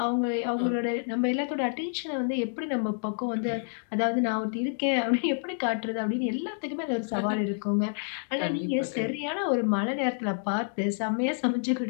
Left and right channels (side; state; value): right; silent; digital silence